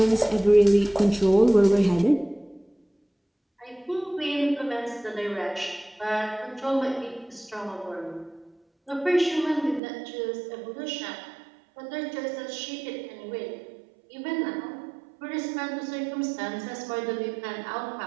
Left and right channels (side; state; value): left; drops out; at 9.8 s